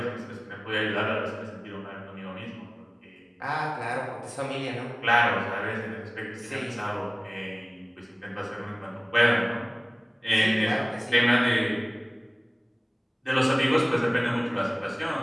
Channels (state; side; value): identical; both; correlation 1.00